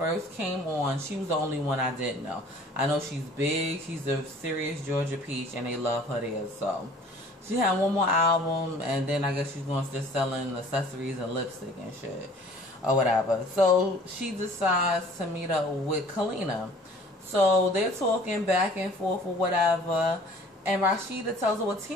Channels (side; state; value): both; normal; correlation 0.51